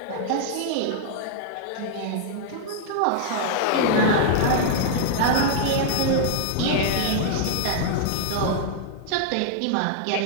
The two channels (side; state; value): both; different; correlation -0.01